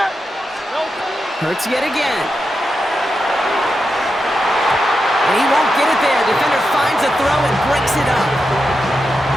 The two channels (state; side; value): normal; both; correlation 0.88